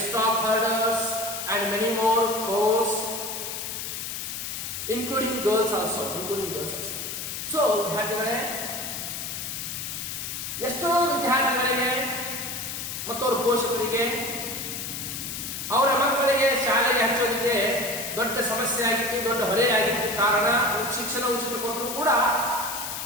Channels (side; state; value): left; noise; hiss, 5 dB below the sound